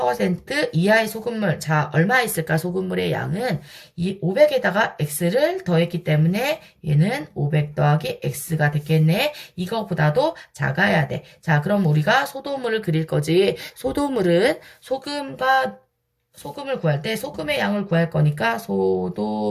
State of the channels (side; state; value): both; identical; correlation 1.00